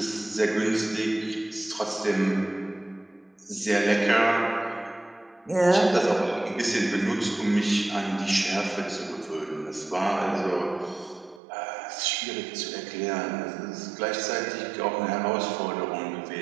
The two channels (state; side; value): drops out; left; at 11.4 s